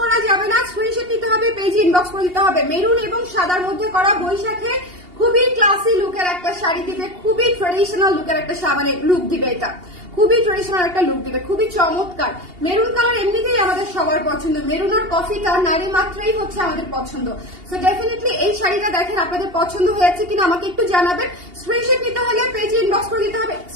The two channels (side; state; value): left; late; 2.8 ms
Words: যাবে না। স্ক্রিনশট নিতে হবে, পেজে ইনবক্স করে দিতে হবে। মেরুন এবং সাদার মধ্যে করা বৈশাখে খুবই ক্লাসি লুকের একটা শাড়ি দিবে, খুবই ট্রেডিশনাল লুকের একটা মানে লুক দিবে, এটা খুবই ট্রেডিশনাল একটা লুক দিবে, খুবই চমৎকার। মেরুন কালার এমনিতেই আমাদের সবার পছন্দ, মেরুন আর কফিটা নারী মাত্রই হচ্ছে আমাদের পছন্দ। সো ডেফিনেটলি এই শাড়িটা দেখেন আপনাদের পছন্দ হয়েছে কিনা আমাকে একটু জানাবেন। স্ক্রিনশট নিতে হলে পেজে ইনবক্স করে দিতে হবে,